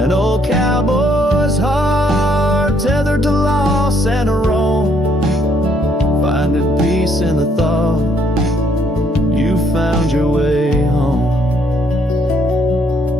old cowboy's heart tethered to loss and a wrong, finding peace in the thought you found your way home.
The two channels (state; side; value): normal; both; correlation 0.69